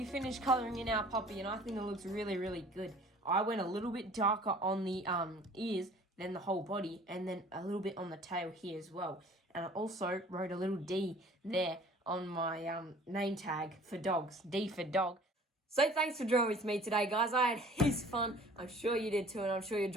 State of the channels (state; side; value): normal; both; correlation 0.50